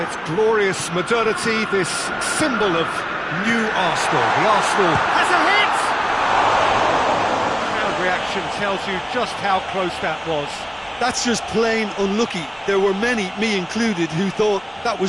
glorious modernity, this symbol of new Arsenal. The Arsenal has a hit! Crowd reaction tells you just how close that was. That's just plain unlucky. There were many, me included, who thought that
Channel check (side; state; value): both; identical; correlation 1.00